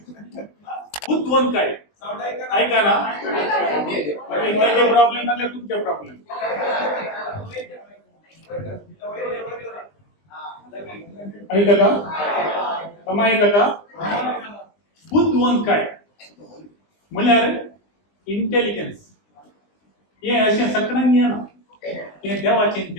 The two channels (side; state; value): right; late; 20 ms